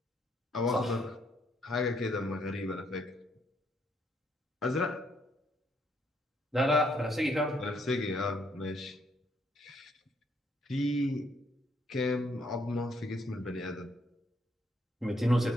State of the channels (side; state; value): both; normal; correlation 0.71